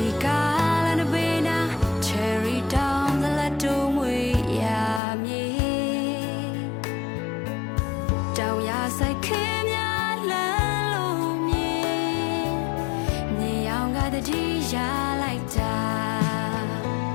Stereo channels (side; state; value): right; drops out; at 5.0 s